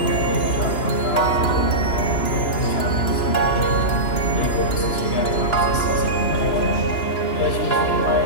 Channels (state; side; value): late; right; 2.9 ms